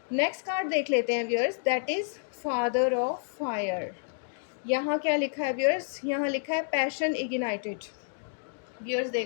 नेक्स्ट कार्ड देख लेते हैं viewers, that is father of fire. यहाँ क्या लिखा है व्यूअर्स, यहाँ लिखा है पैशन इग्नाइटेड। व्यूअर्स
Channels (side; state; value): right; silent; digital silence